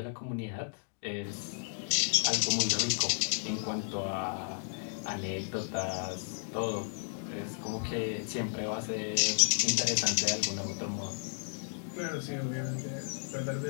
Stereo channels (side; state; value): right; silent; digital silence